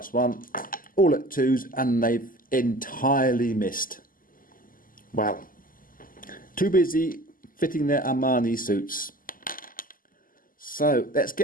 1, all at 2s, and they've entirely missed. Wow. Too busy fitting their Armani suits. So let's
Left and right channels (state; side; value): late; right; 0.41 ms